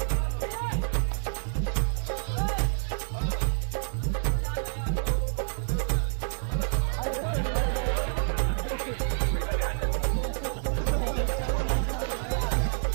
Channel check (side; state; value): left; silent; 59 dB below the other